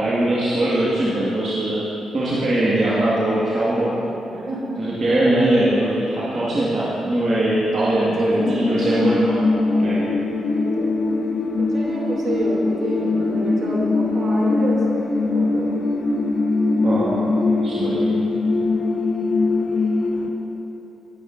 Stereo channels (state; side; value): normal; both; correlation 0.86